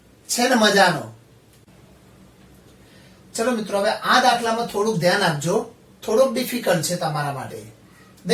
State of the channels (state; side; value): identical; both; correlation 1.00